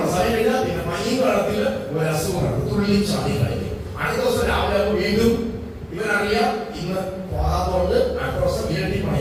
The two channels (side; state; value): both; identical; correlation 1.00